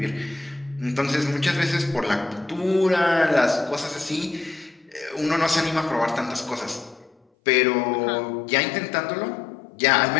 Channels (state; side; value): drops out; right; at 7.2 s